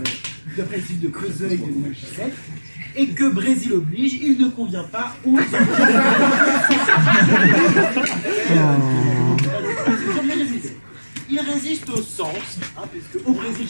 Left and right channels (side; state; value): both; inverted; correlation -1.00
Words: d'après le site de Creuseil de 2017, et que Brésil oblige, il ne convient pas aux il résiste au sens, hein, puisque au Brésil